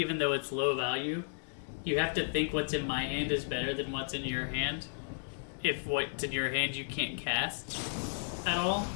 though it's low value. You have to think what's in my hand is better than what's in your hand. If what's in your hand you can't cast at all.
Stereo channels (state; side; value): silent; right; 55 dB below the other